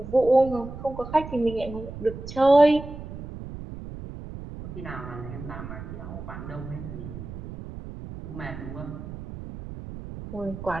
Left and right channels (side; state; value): right; noise; rumble, 11 dB below the sound